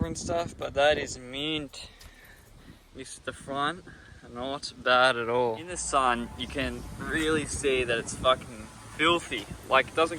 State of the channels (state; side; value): identical; both; correlation 1.00